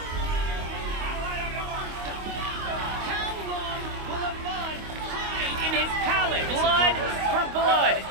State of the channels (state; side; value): late; left; 25 ms